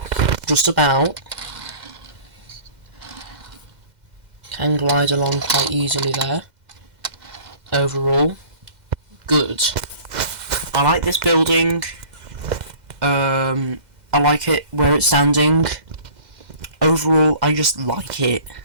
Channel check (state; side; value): late; left; 2.0 ms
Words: just about. Can glide along quite easily there. Overall, good. I like this building. I like it where it's standing. Overall, I just like it.